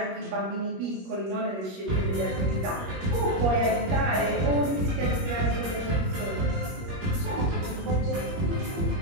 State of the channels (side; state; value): left; late; 21 ms